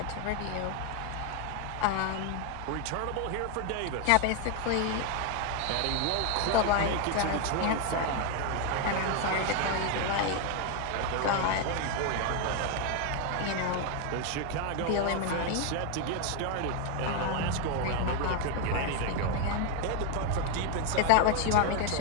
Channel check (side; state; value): both; different; correlation 0.01